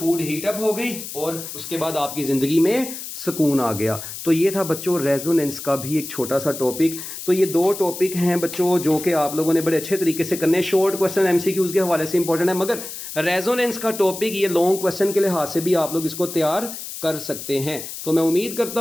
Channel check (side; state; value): left; noise; hiss, 9 dB below the sound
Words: हीट अप हो गई और उसके बाद आपकी ज़िंदगी में सुकून आ गया। तो ये था बच्चों रेजोनेंस का भी एक छोटा सा टॉपिक। तो ये दो टॉपिक हैं बच्चों जो कि आप लोगों ने बड़े अच्छे तरीके से करने हैं। शॉर्ट क्वेश्चन एमसीक्यूज के हवाले से इंपॉर्टेंट है, मगर रेजोनेंस का टॉपिक ये लॉन्ग क्वेश्चन के लिहाज से भी आप लोग इसको तैयार कर सकते हैं। तो मैं उम्मीद